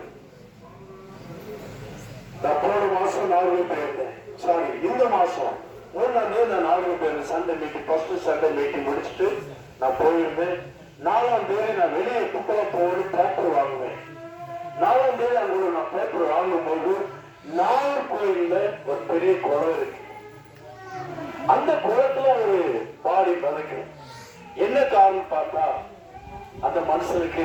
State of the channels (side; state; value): both; identical; correlation 1.00